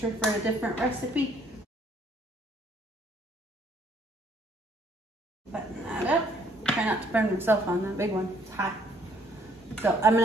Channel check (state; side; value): normal; both; correlation 0.64